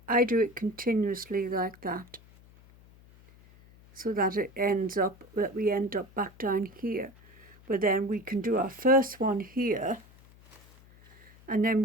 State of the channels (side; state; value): left; noise; hum, 25 dB below the sound